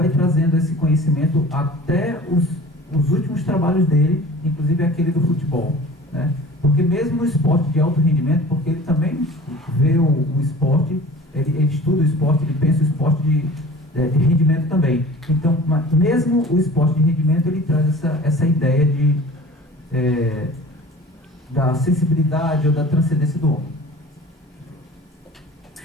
trazendo esse conhecimento até os últimos trabalhos dele, inclusive aquele do futebol, né? Porque mesmo no esporte de alto rendimento, porque ele também vê o esporte, ele estuda o esporte, ele pensa o esporte de rendimento também. Então, mesmo o esporte de rendimento, ele traz essa ideia da sensibilidade ou da transcendência do homem.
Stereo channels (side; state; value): both; normal; correlation 0.42